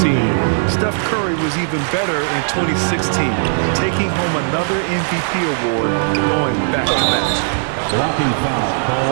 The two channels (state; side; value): silent; left; digital silence